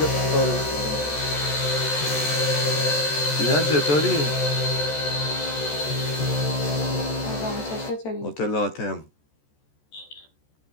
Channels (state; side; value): late; right; 14 ms